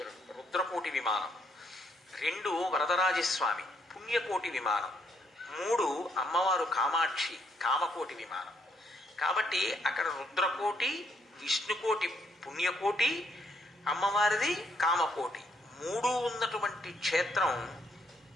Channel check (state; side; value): normal; both; correlation 0.72